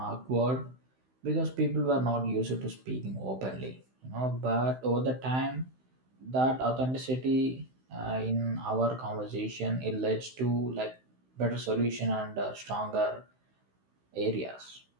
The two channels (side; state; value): left; late; 16 ms